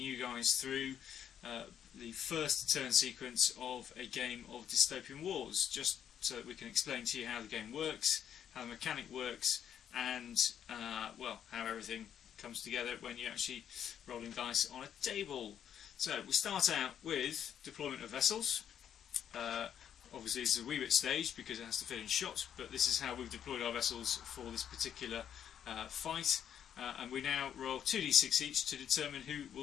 you guys through the first turn sequence of a game of Dystopian Wars, just so that we can explain to you how the game works, how the mechanic works, and well, how everything comes together when you're actually rolling dice on a table. So we start out with deployment of vessels. Obviously this is a wee bit staged because it has to fit in shot, but this is how we've deployed our vessels for this particular fight, and we now roll 2d6 each to determine who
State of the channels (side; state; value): right; quieter; 9.2 dB